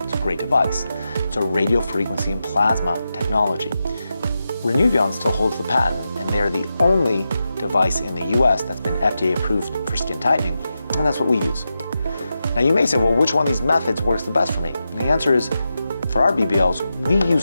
It's a great device. It's a radio frequency and plasma technology. Renuvion still holds the patent, and they're the only device in the US that's been FDA approved for skin tightening, and that's what we use. Now you may say, well, which one of these methods works the best for me? And the answer is, for our BBLs, we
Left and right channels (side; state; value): both; inverted; correlation -0.89